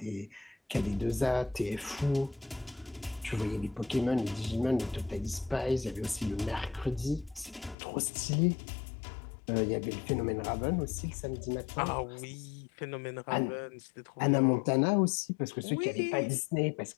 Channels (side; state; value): right; drops out; at 7.8 s